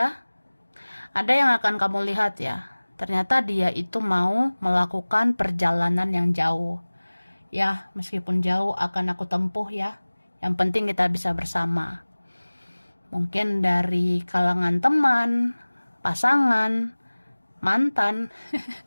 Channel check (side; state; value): both; inverted; correlation -1.00